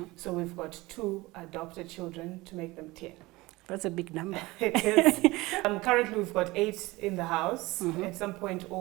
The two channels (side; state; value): left; quieter; 20.9 dB